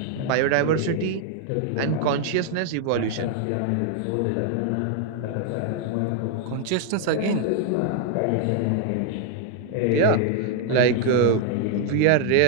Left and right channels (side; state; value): both; different; correlation 0.00